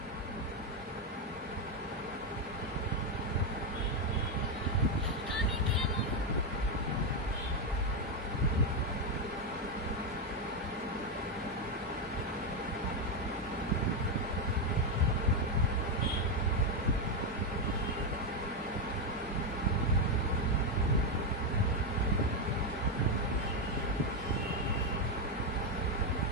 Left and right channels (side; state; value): both; normal; correlation 0.05